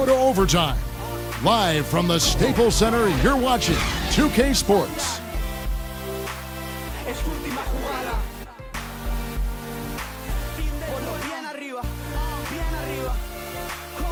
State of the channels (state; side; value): identical; both; correlation 1.00